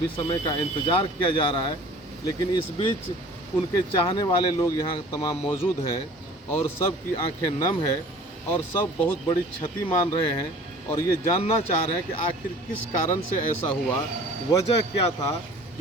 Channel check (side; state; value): both; normal; correlation 0.47